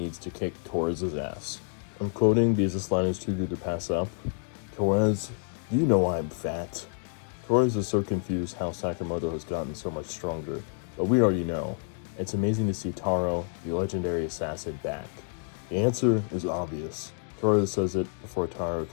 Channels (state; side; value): silent; right; 59 dB below the other